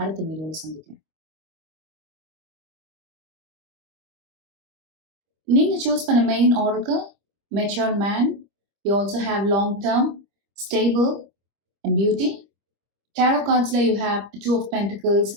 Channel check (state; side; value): late; left; 25 ms